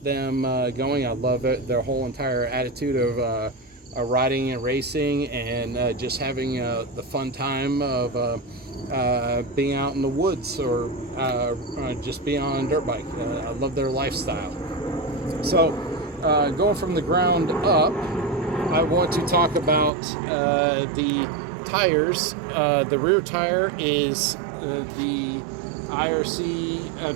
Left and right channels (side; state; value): left; drops out; at 19.9 s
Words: them going. I love it, their whole entire attitude of riding and racing, and just having the fun time of being out in the woods, or just being on a dirt bike. I love their lifestyle. So going from the ground up, I want to talk about the tires. The rear tire is the IRC